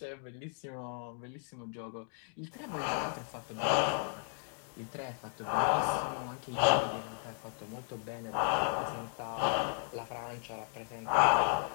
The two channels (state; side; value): silent; right; 54 dB below the other